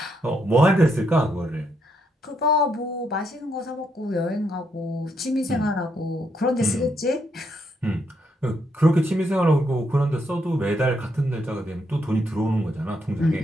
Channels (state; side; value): normal; both; correlation 0.77